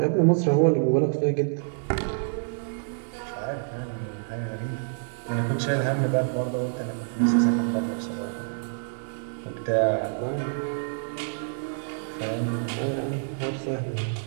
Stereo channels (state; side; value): silent; left; digital silence